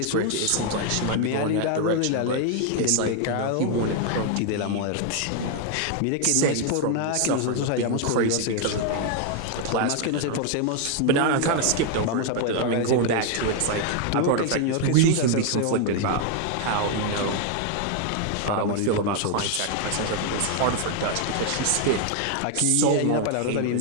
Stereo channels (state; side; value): different; both; correlation 0.00